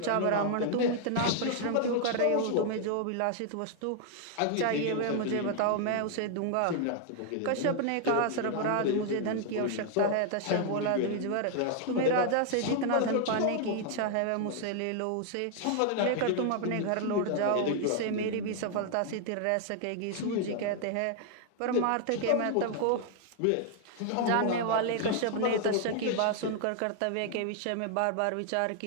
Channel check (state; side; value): different; both; correlation 0.00